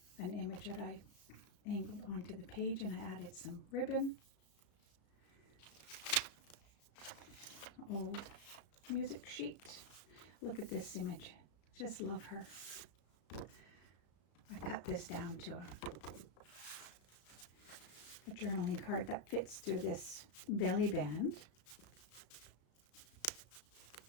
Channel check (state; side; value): late; right; 34 ms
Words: an image that I angled onto the page, and I added some ribbon. Old music sheet. Look at this image. Just love her. I cut this down to a journaling card that fits through this belly band.